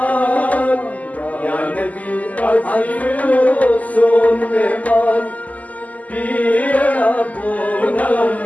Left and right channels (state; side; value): late; right; 0.076 ms